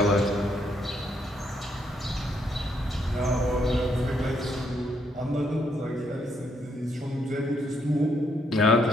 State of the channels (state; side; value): normal; both; correlation 0.74